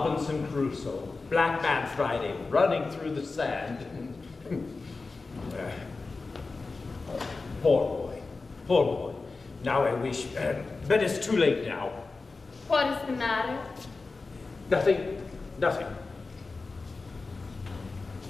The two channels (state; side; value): quieter; right; 3.9 dB